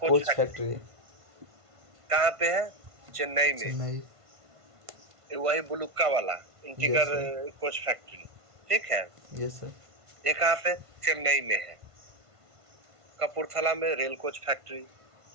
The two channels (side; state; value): left; late; 1.5 ms